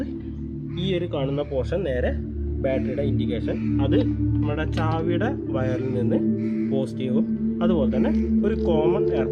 ഈ ഒരു കാണുന്ന പോർഷൻ നേരെ ബാറ്ററിയുടെ ഇൻഡിക്കേഷൻ, അത് നമ്മുടെ ചാവിയുടെ വയറിൽ നിന്ന് പോസിറ്റീവും അതുപോലെ തന്നെ ഒരു കോമൺ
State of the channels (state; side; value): identical; both; correlation 1.00